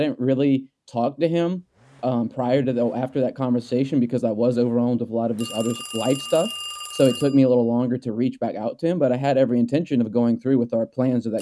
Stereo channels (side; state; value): both; identical; correlation 1.00